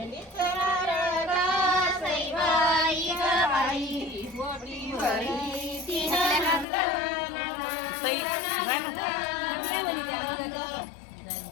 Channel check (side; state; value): right; drops out; at 6.7 s